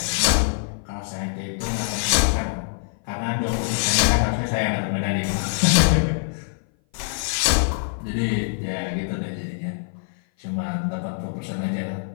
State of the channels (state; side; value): silent; right; 57 dB below the other